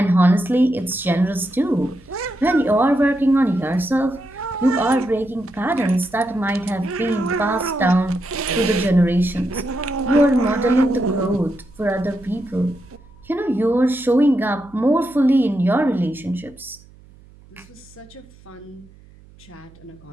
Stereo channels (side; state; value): right; noise; hum, 25 dB below the sound